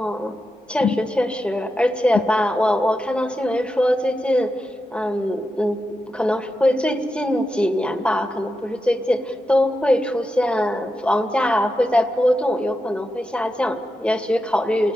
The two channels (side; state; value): both; normal; correlation 0.88